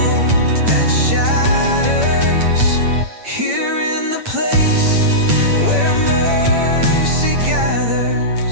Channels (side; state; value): left; late; 8.8 ms